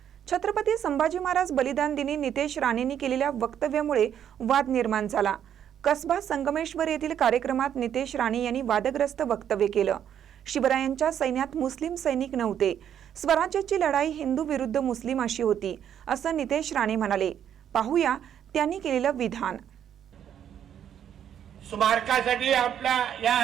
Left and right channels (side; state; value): left; quieter; 9.5 dB